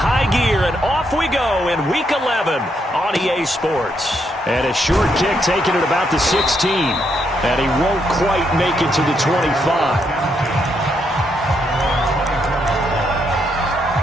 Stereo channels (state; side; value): normal; both; correlation 0.77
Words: gear, and off we go in Week 11 on EA Sports. And a short kick taken at about the 16. And he won't quite make it to the 25.